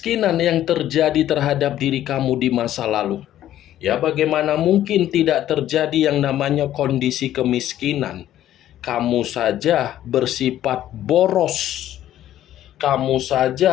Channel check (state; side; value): quieter; right; 12.5 dB